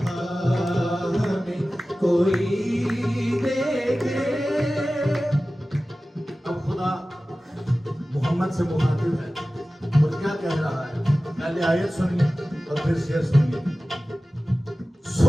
हमें कोई देखे अब खुदा मोहम्मद से मुखातिब है और क्या कह रहा है पहले आयत सुनिए और फिर शेर सुनिए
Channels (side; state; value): both; normal; correlation 0.96